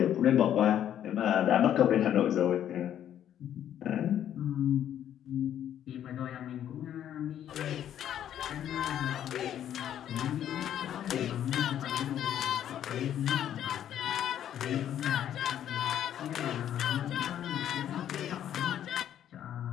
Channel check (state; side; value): quieter; right; 10.5 dB